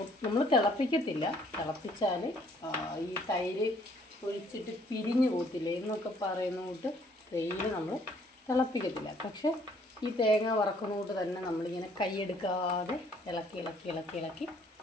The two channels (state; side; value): normal; both; correlation 0.62